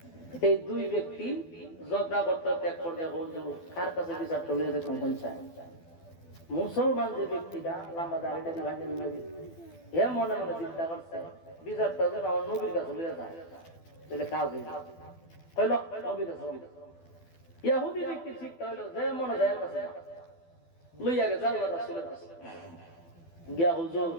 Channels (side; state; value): right; late; 12 ms